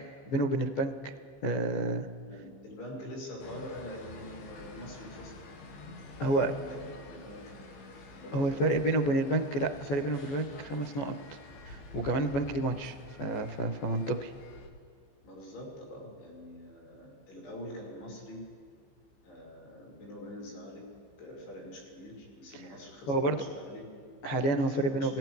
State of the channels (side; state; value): right; late; 15 ms